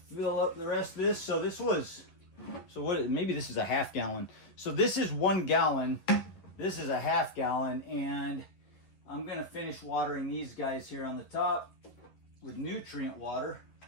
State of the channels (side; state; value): right; late; 11 ms